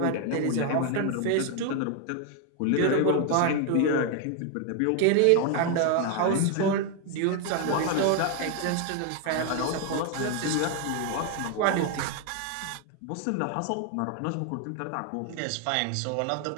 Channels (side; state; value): both; different; correlation 0.01